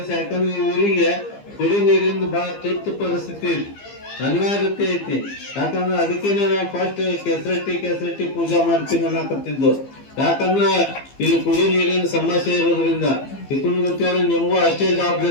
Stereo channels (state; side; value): late; right; 15 ms